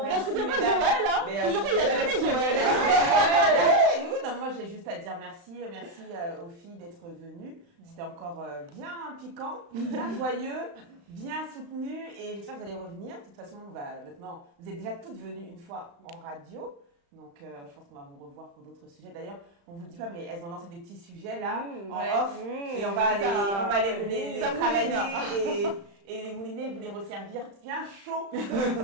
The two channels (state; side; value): late; left; 35 ms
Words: Est-ce que c'est pas Joël, hein? Toujours il y a jamais Joël. Oui, non, moi j'ai juste à dire merci aux filles d'être venues. C'était encore bien piquant, bien joyeux, bien soutenu et j'espère que vous allez revenir. De toute façon, maintenant, vous êtes déjà toutes venues une fois en radio. Donc, je pense qu'on va vous revoir pour d'autres sujets. D'ailleurs, on ne vous le dit pas, mais elles ont lancé des petits sujets là, en off. Et on va les travailler et les mouliner, vous les resservir bien chaud,